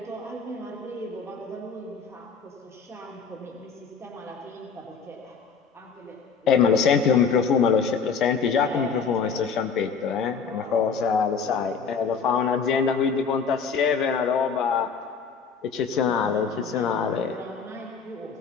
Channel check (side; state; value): right; quieter; 5.8 dB